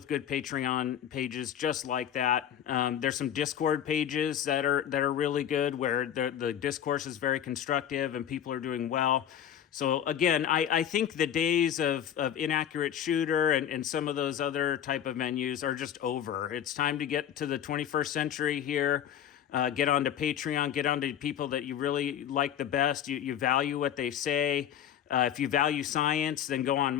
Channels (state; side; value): quieter; right; 9.9 dB